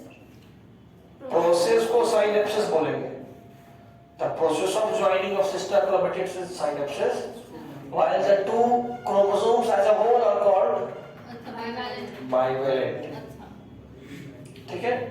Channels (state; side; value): identical; both; correlation 1.00